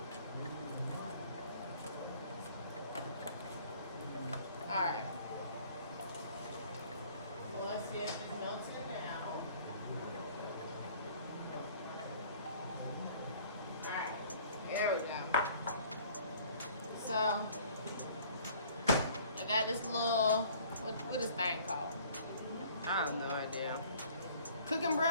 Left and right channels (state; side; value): inverted; both; correlation -0.53